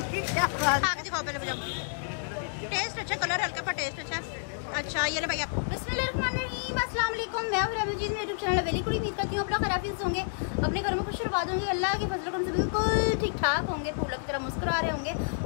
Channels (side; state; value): right; silent; 58 dB below the other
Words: की क्या बात? खा के दिखाओ पहले मुझे। टेस्ट अच्छा, कलर हल्का पर टेस्ट अच्छा। अच्छा ये ले भाई आप। बिस्मिल्लाहिर्रहमानिर्रहीम, अस्सलाम वालेकुम। मैं हूं रमजीत, मेरे यूट्यूब चैनल वेरी गुड। उम्मीद करती हूं आप लोग खैरियत से होंगे, अपने घरों में खुश आबाद होंगे, अल्लाह के फजल करम से बिल्कुल ठीक ठाक होंगे, फूलों की तरह मुस्कुरा रहे होंगे।